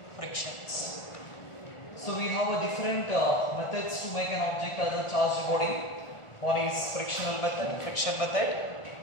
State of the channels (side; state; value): right; late; 1.4 ms